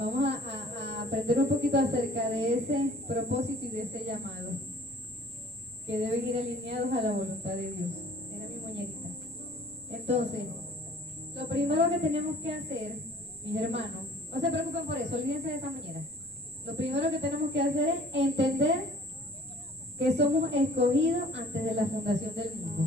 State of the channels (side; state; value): left; noise; rumble, 30 dB below the sound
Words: a aprender un poquito acerca de ese propósito y de ese llamado, que deben ir alineados a la voluntad de Dios. Era mi muñequita. Entonces, lo primero que tenemos que hacer, mis hermanos, no se preocupen por eso, olvídense de esa muñeca. Lo primero que tenemos que hacer es entender que somos escogidos antes de la fundación del